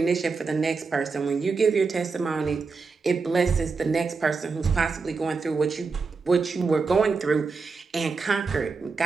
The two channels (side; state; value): left; quieter; 4.6 dB